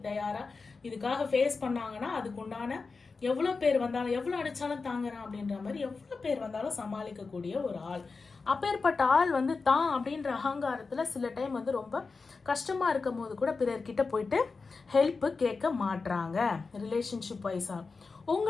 தயாராக இதுக்காக ஃபேஸ் பண்ணாங்கன்னா அதுக்கு உண்டான எவ்வளோ பேர் வந்தாலும், எவ்வளோ அடித்தாலும் தாங்குறான் அப்படின்ற மாதிரி எவ்வளோ பேர் வந்தாலும் சமாளிக்கக்கூடிய ஒரு ஆள். அப்பேற்பட்ட ஆள் வந்து தான் அப்படின்ற அகங்காரத்தில் சில டைம் வந்து ரொம்ப கஷ்டமாக இருக்கும் போது கூட பிறர்கிட்ட போயிட்டு ஹெல்ப்பு கேட்க மாட்றாங்க. ரிலேஷன்ஷிப் வைஸாக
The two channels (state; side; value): quieter; right; 4.4 dB